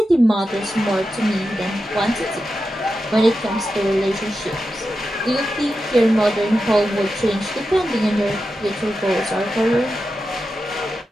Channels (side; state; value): both; normal; correlation 0.90